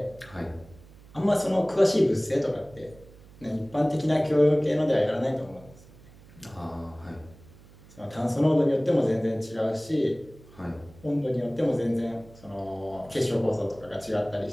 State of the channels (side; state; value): right; noise; hum, 23 dB below the sound